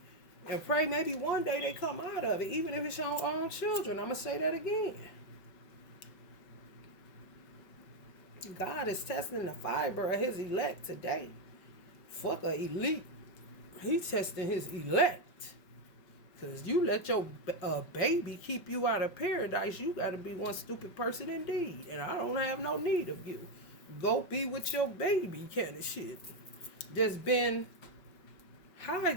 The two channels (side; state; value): right; late; 5.3 ms